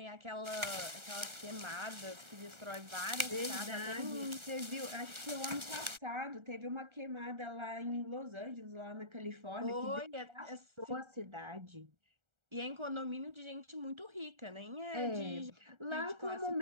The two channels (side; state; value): left; late; 1.4 ms